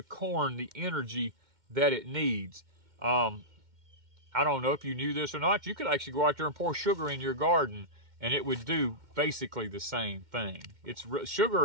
corn the energy that it needs. I don't know if you knew this or not. You could actually go out there and pour sugar in your garden and it would do basically the same thing.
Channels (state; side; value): late; left; 2.1 ms